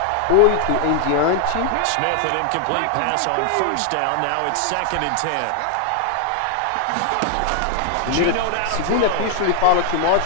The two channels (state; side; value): different; both; correlation 0.00